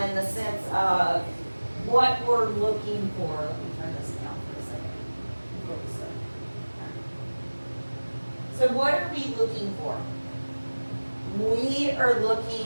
in the sense of what we're looking for. Let me turn this down for a second. So what are we looking for? We are looking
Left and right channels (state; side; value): inverted; both; correlation -1.00